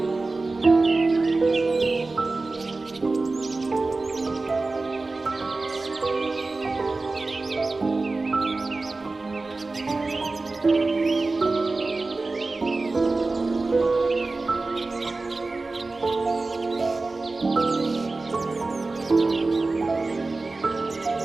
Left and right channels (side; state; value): left; quieter; 3.5 dB